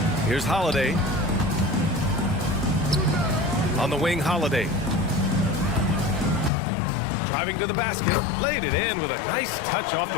Here's Holiday. On the wing, Holiday. Driving to the basket. Laid it in with a nice touch off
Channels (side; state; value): right; drops out; at 6.5 s